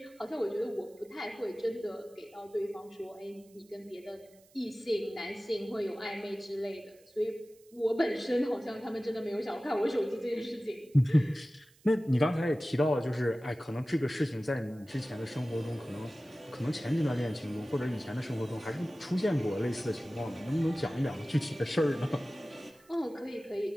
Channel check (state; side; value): noise; right; hiss, 29 dB below the sound